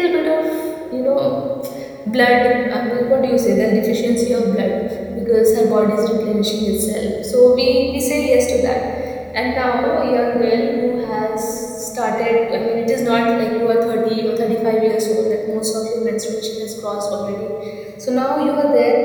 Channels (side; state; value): both; identical; correlation 1.00